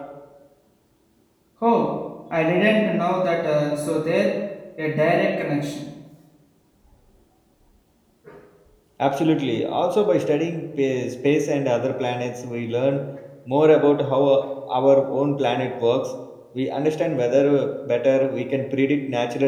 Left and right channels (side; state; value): both; identical; correlation 1.00